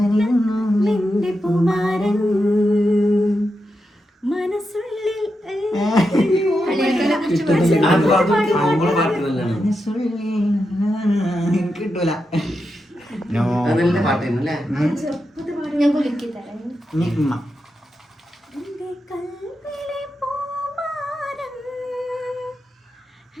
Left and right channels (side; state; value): both; normal; correlation 0.87